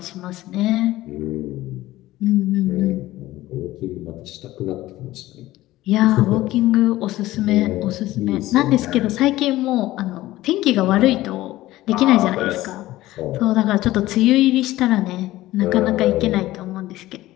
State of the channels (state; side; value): quieter; right; 16.5 dB